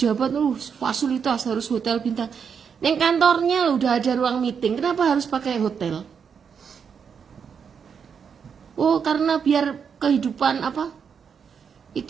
fasilitas harus hotel bintang. Neng kantornya loh udah ada ruang meeting, kenapa harus pakai hotel? Oh, karena biar kehidupan apa?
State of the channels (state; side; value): quieter; left; 6.8 dB